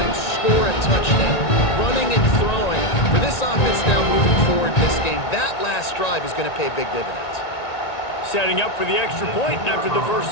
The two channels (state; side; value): late; right; 1.9 ms